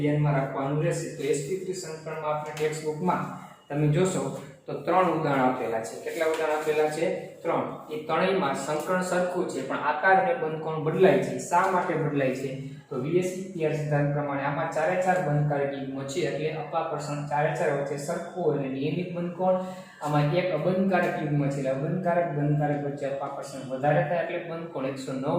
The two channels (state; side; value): identical; both; correlation 1.00